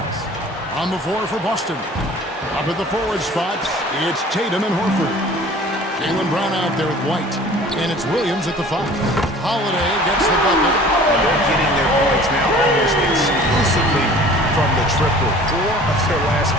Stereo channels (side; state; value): both; normal; correlation 0.47